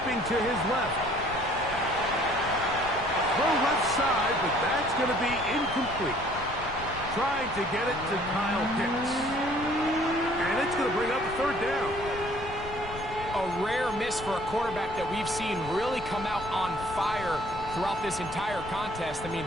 to his left. Throw left side, but that's going to be incomplete. Trying to get it to Kyle Pitts. And it's going to bring up a third down. a rare miss for a quarterback that we've seen really come out on fire throughout this entire contest. I mean,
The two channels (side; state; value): left; noise; rumble, 13 dB below the sound